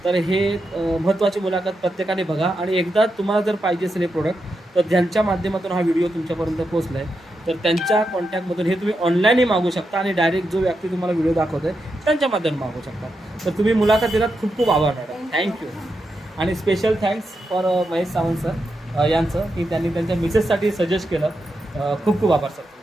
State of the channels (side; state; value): both; normal; correlation 0.86